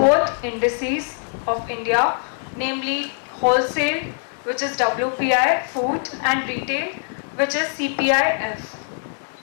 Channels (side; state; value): right; silent; 64 dB below the other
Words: indices of India, namely wholesale, which is WPI, food, and retail, which is CPI-F.